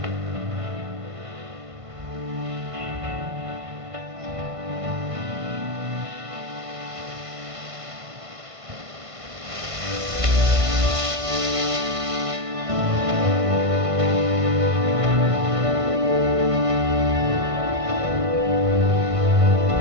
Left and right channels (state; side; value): late; left; 1.5 ms